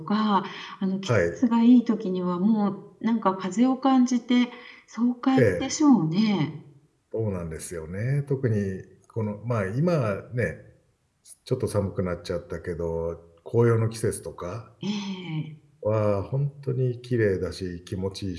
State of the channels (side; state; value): both; identical; correlation 1.00